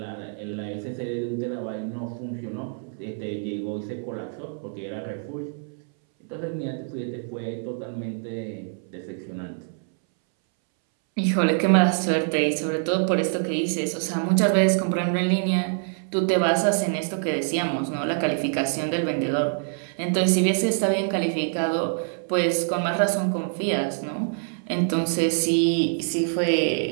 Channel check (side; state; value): left; silent; 62 dB below the other